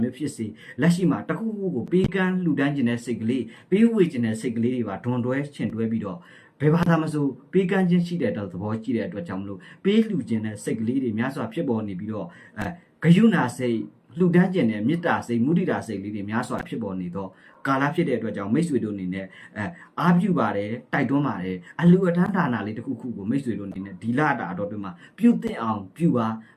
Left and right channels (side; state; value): both; identical; correlation 1.00